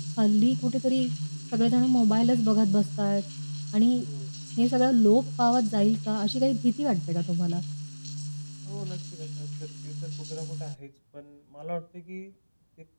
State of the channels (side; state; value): both; inverted; correlation -1.00